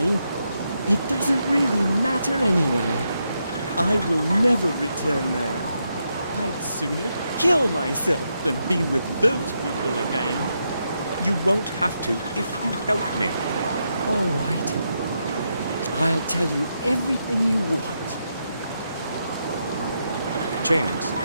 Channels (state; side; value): inverted; both; correlation -0.82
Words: it doesn't really matter anyway. I will never return there. I'd sooner kill myself than be with those people again. You won't have to if you help me. All right. I'll tell you everything you want. James,